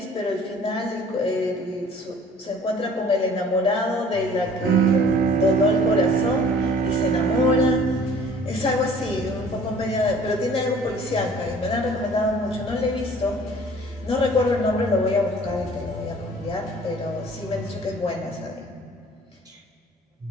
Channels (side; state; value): both; normal; correlation 0.51